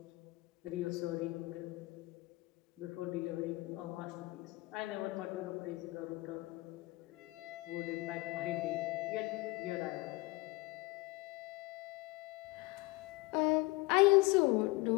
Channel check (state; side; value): quieter; right; 22.2 dB